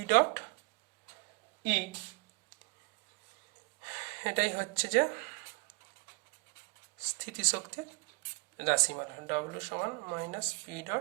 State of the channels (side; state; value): left; quieter; 29.3 dB